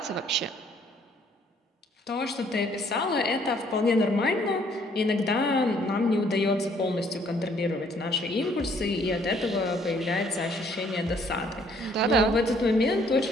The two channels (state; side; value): normal; both; correlation 0.63